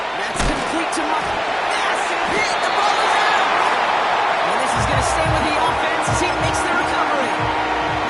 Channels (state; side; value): identical; both; correlation 1.00